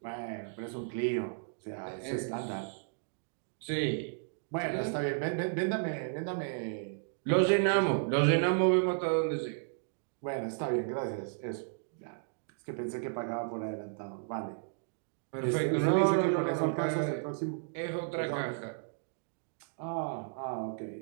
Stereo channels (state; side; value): silent; left; digital silence